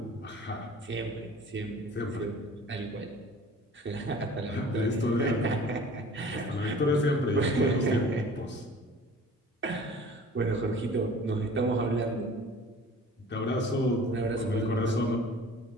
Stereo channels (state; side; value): normal; both; correlation 0.46